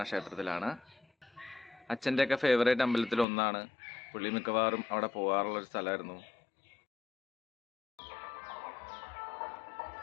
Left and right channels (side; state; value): right; drops out; at 3.2 s